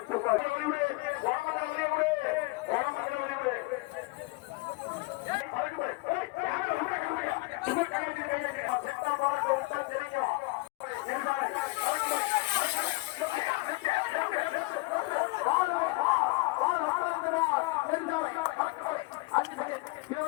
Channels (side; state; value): right; quieter; 24.9 dB